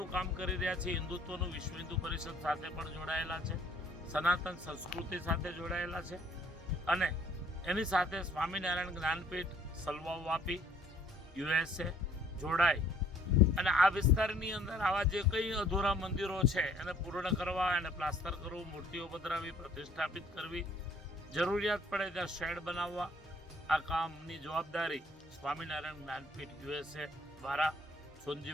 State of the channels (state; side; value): normal; both; correlation 0.59